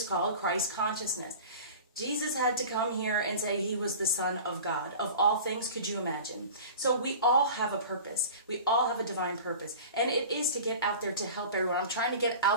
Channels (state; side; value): inverted; both; correlation -0.38